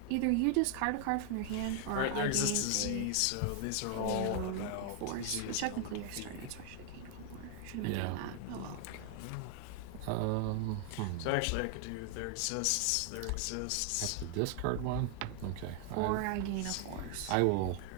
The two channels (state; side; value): different; both; correlation 0.00